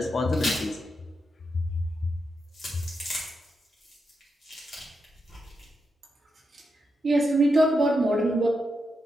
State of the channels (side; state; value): both; normal; correlation 0.85